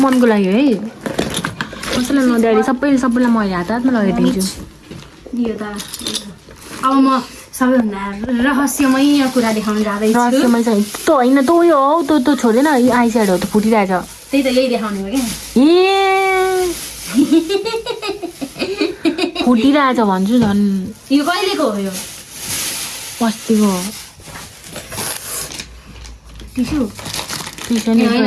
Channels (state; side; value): identical; both; correlation 1.00